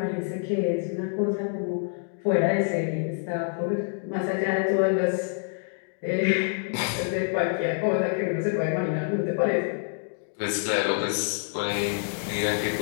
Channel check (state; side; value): silent; right; 60 dB below the other